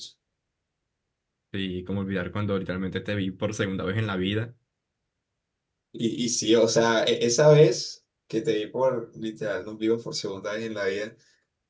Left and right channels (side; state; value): both; identical; correlation 1.00